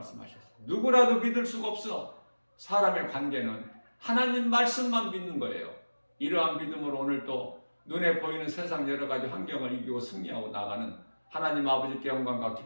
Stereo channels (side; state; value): both; inverted; correlation -1.00